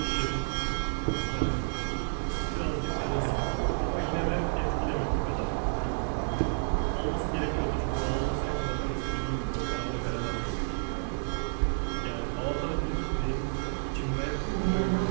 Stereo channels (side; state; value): left; silent; digital silence